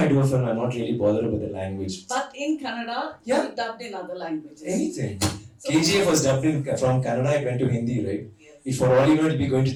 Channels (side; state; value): both; identical; correlation 1.00